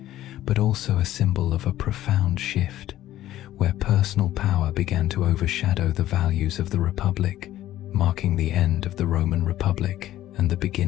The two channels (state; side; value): quieter; right; 13.7 dB